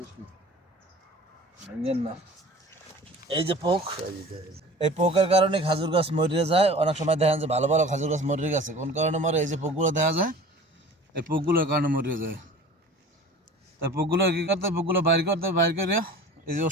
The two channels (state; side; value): normal; both; correlation 0.42